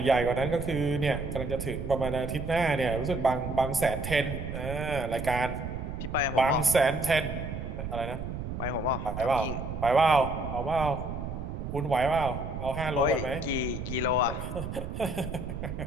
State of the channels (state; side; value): noise; right; rumble, 6 dB below the sound